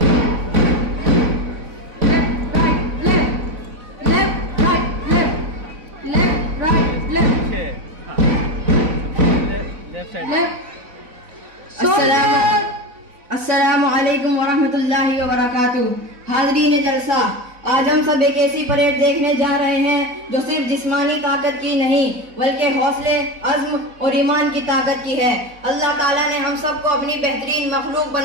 अस्सलामु अलैकुम वरहमतुल्लाहि वबरकातुहू। हाज़रीन जलसा, आज हम सब एक ऐसी परेड देखने जा रहे हैं जो सिर्फ जिस्मानी ताकत की नहीं बल्कि हौसले, अज़्म और ईमान की ताकत की है। अल्लाह ताला ने हम सबको अपनी बेहतरीन मखलूक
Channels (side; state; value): left; late; 4.0 ms